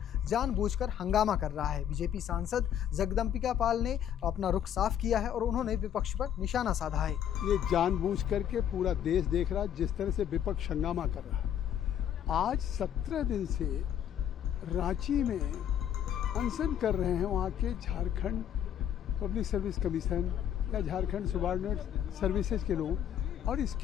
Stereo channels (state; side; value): quieter; right; 9.7 dB